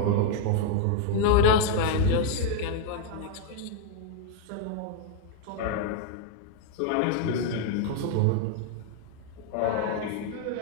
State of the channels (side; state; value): both; different; correlation 0.00